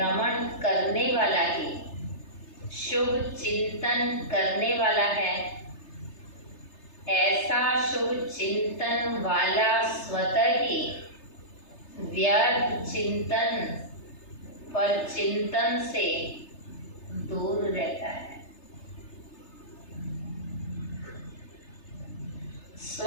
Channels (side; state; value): right; late; 3.3 ms